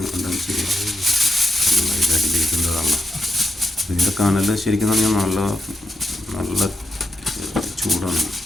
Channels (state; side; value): normal; both; correlation 0.85